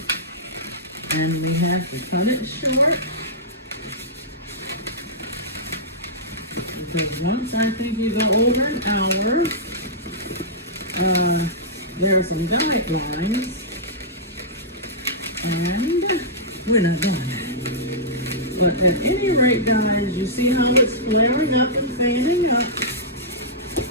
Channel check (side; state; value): both; normal; correlation -0.15